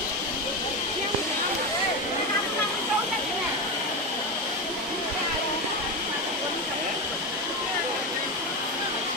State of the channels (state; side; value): normal; both; correlation 0.16